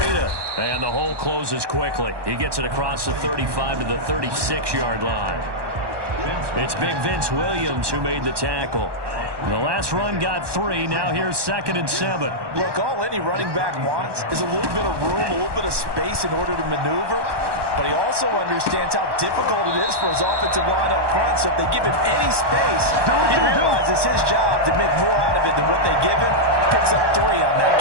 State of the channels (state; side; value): late; left; 1.2 ms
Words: And the hole closes quickly. He gets it across the 35 to the 36-yard line. It's Big Vince Williams who made the tackle. The last run got 3. Now here's 2nd and 7. Look, all any running back wants is a little bit of room, a little bit of space in order to maneuver. But he also understands how difficult it is for his offensive line up front. So if they give him any space, he realizes his job to make more out of it than what they give him. Picks up 3 on that